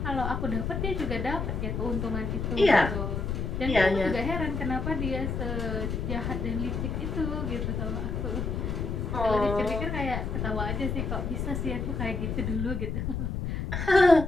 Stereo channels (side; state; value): left; noise; rumble, 2 dB below the sound